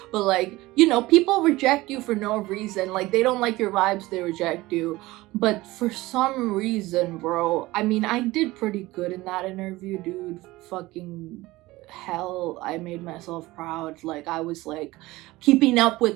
But like, you know, people reject you for no reason. Like they don't like your vibes, they reject you. But for some reason, bro, I mean, I did pretty good in that interview, dude. Fucking hell, I made myself proud. Like I was like keeping up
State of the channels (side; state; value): left; quieter; 19.2 dB